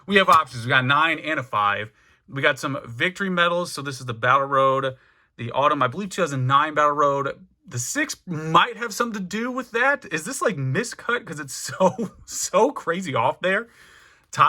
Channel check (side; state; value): both; identical; correlation 1.00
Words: we have options. We got 9 and a 5. We got some victory medals. So this is the Battle Road, the Autumn, I believe 2009 Battle Road. The 6 might have something to do with that. Is this like miscut? Because it's so crazy off there.